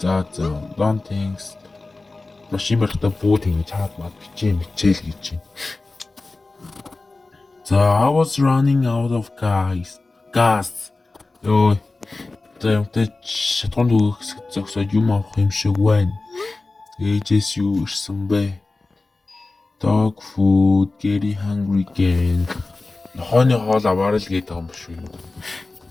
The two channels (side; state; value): right; quieter; 3.4 dB